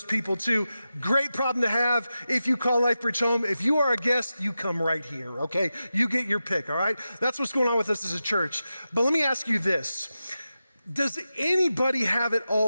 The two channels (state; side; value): inverted; both; correlation -0.92